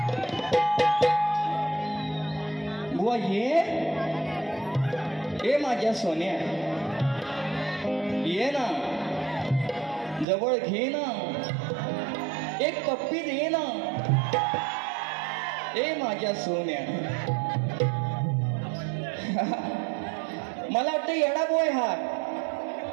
बुवा ये माझ्या सोन्या, ये ना, जवळ घे ना, एक पप्पी दे ना, ए माझ्या सोन्या. मला वाटतं येडा बोय हा,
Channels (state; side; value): drops out; left; at 10.2 s